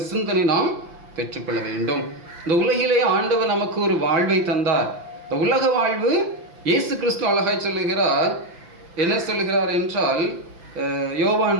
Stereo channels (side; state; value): left; late; 5.9 ms